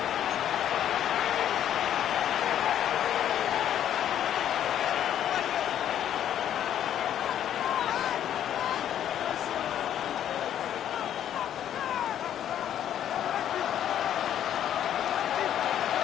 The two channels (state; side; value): quieter; right; 10.5 dB